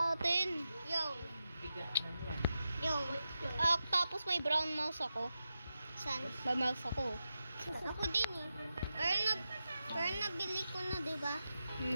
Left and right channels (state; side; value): inverted; both; correlation -0.90